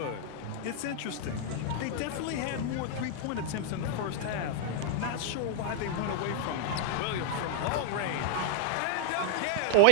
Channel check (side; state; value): both; different; correlation -0.01